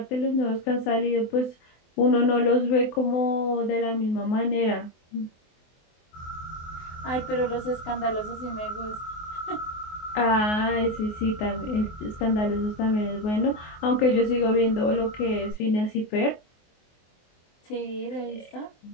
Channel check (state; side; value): late; right; 24 ms